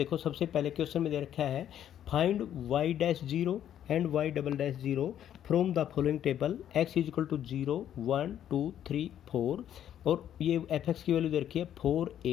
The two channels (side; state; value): right; quieter; 10.5 dB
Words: सबसे पहले क्वेश्चन में दे रखा है find y'0 and y'0 from the following table, x = 0 1 2 3 4, और ये f(x) की वैल्यू दे रखी है 4